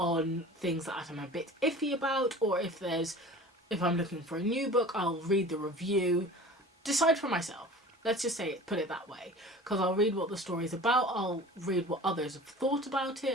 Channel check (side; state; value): both; normal; correlation 0.40